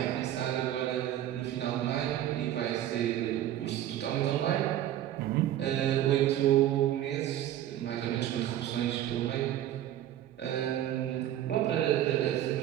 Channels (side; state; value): left; quieter; 12.3 dB